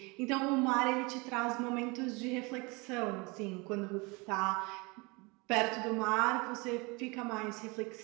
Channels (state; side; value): quieter; left; 27.2 dB